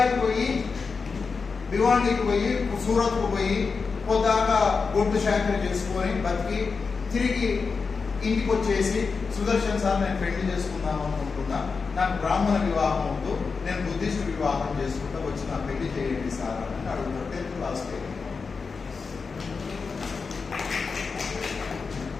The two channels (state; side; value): quieter; right; 4.9 dB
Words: పోయి, భివాండికి పోయి, సూరత్కు పోయి పొద్దాకా గొడ్డు శాఖలు చేసుకొని బతికి తిరిగి ఇంటికి వచ్చేసి, సుదర్శన్ సార్ నేను పెళ్లి చేసుకుందాం అనుకుంటున్నా, నాకు బ్రాహ్మణ వివాహం వద్దు, నేను బుద్ధిస్ట్ వివాహం చేసుకుంటా, వచ్చి నా పెళ్లి చేయండి సార్ అని అడుగుతారు. 10th class